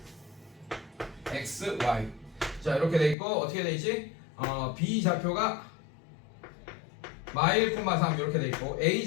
x, y. 자, 이렇게 돼 있고 어떻게 돼 있지? b 좌표가 -1,3 이렇게 돼 있고 a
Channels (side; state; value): right; drops out; at 3.2 s